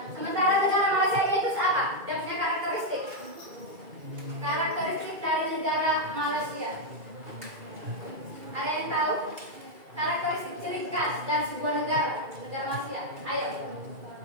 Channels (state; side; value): late; left; 2.4 ms